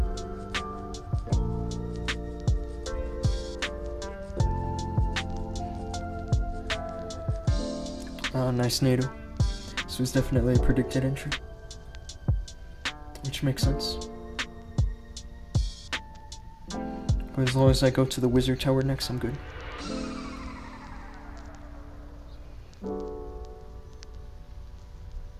Nice NATO. This was definitely a predicted entry. Which makes sense. But as long as I go to the wizard tower next, I'm good.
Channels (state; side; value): identical; both; correlation 1.00